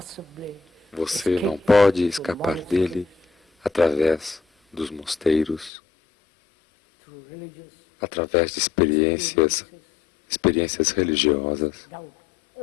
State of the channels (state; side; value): drops out; right; at 5.7 s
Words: Você não escape pode through escapar monasteries, dele através dos mosteiros, through religious através de experiências religiosas. doubt